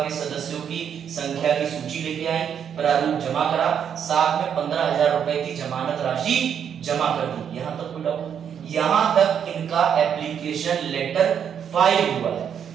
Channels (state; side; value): quieter; left; 8.2 dB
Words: के सदस्यों की संख्या की सूची लेके आए, प्रारूप जमा करा, साथ में 15,000 रुपए की जमानत राशि जमा कर दी। यहां तक कोई डाउट? यहां तक इनका एप्लीकेशन लेटर फाइल हुआ है।